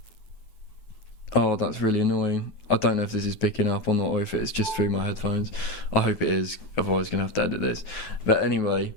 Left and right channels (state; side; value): late; right; 9.3 ms